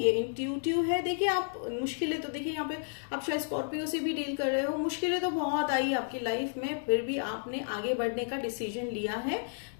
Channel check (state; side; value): silent; right; digital silence